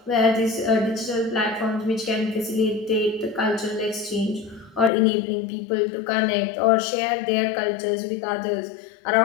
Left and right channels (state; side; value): drops out; right; at 4.9 s